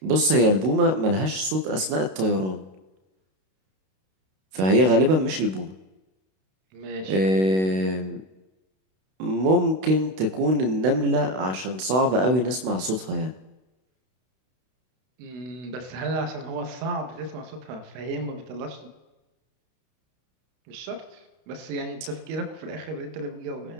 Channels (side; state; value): left; late; 32 ms